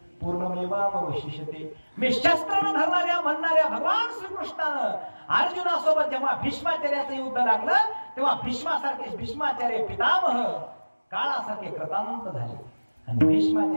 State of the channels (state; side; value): inverted; both; correlation -1.00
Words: पूर्णमेवावशिष्यते. मी शस्त्र न धरणाऱ्या म्हणणाऱ्या भगवान श्रीकृष्णानं अर्जुनासोबत जेव्हा भीष्माचार्याचं युद्ध लागलं तेव्हा भीष्माचार्य पितामह काळासारखे कृतांत झाले. आणि